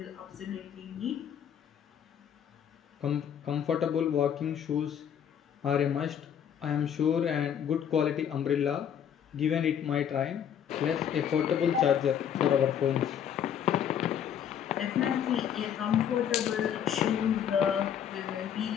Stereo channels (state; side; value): quieter; right; 8.9 dB